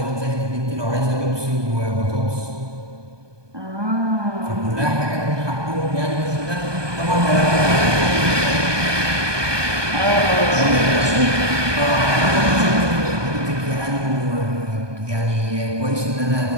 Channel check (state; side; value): late; left; 1.2 ms